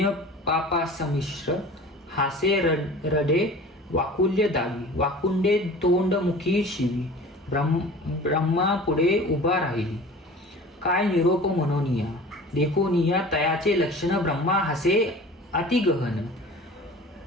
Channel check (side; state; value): both; normal; correlation 0.41